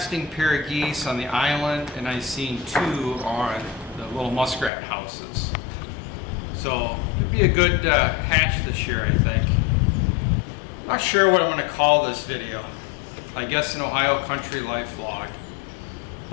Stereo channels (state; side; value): drops out; right; at 4.7 s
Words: pair of geese on the island, and I've seen 2 on the little muskrat houses. So it'd be a good hatch this year, I think. Not sure what I'm going to call this video. I guess an Ohio country life vlog.